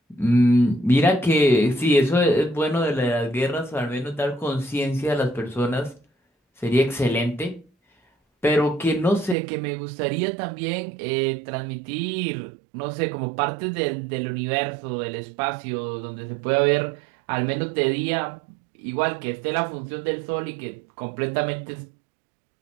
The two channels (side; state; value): left; drops out; at 9.3 s